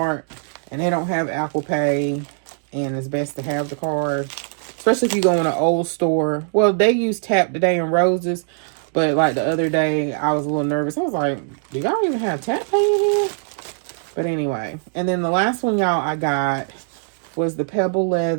and they don't have Apple Pay, and it's best to have the card. Especially if you go in an old store. Well, they use Tap today in Roses, but like the other day, I was a little nervous. I was like, do y'all even have Tap Pay in here? But anyway, and then the last one, y'all, I got was the Pebble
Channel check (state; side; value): silent; left; digital silence